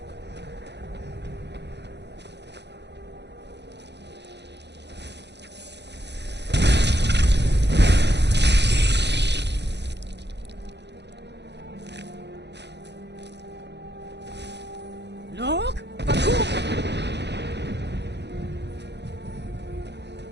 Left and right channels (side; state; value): left; late; 0.50 ms